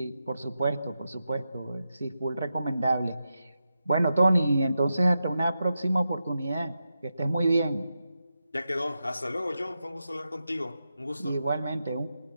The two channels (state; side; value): inverted; both; correlation -0.89